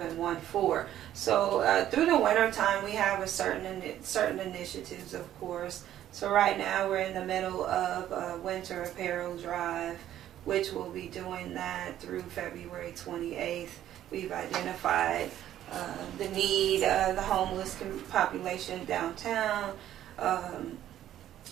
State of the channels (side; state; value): left; quieter; 12.0 dB